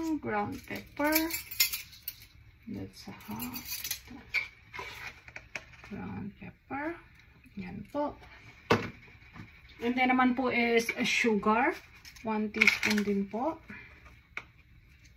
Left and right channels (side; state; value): both; identical; correlation 1.00